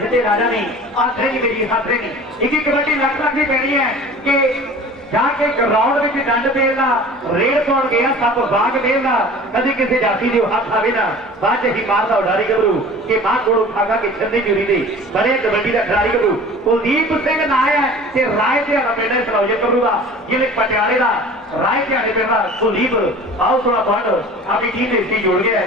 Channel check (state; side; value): normal; both; correlation 0.42